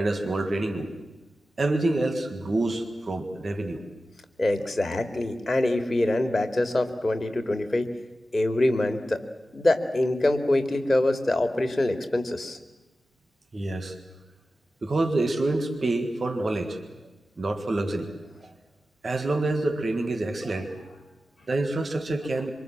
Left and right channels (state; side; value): normal; both; correlation 0.93